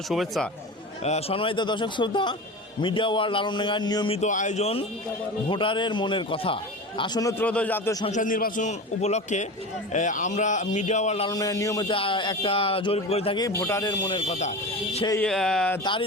শুভেচ্ছা। সম্মানিত দর্শক শ্রোতা, মিডিয়া ওয়ার্ল্ড আলমডাঙ্গার নিয়মিত আয়োজন ভোটারের মনের কথা। আসন্ন ত্রয়োদশ জাতীয় সংসদ নির্বাচন উপলক্ষে আমরা মিডিয়া ওয়ার্ল্ড আলমডাঙ্গার নিয়মিত একটা জরিপ করে থাকি ভোটারের মনের কথা। সেই তারই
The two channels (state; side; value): normal; both; correlation 0.29